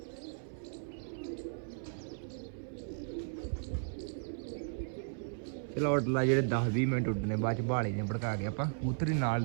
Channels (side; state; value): left; silent; 54 dB below the other